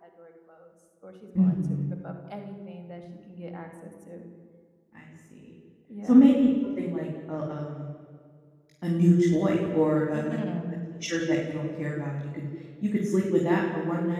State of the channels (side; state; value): both; identical; correlation 1.00